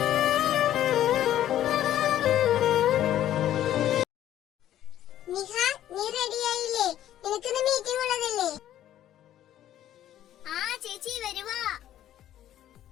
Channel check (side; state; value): right; quieter; 12.1 dB